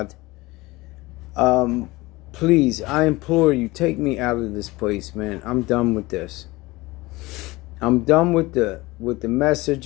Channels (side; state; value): right; quieter; 21.2 dB